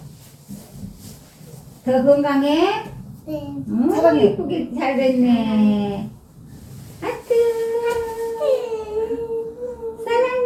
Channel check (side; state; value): both; identical; correlation 1.00